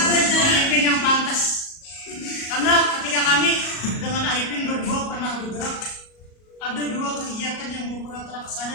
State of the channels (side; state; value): right; late; 37 ms